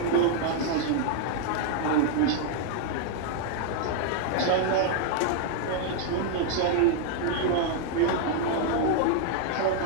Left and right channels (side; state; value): both; different; correlation 0.00